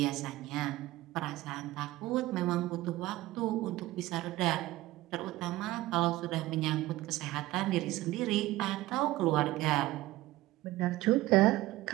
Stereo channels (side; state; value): left; quieter; 17.4 dB